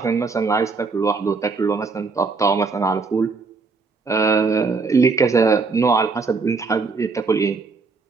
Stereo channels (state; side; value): quieter; left; 4.4 dB